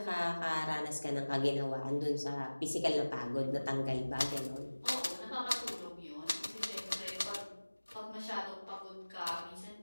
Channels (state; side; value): inverted; both; correlation -1.00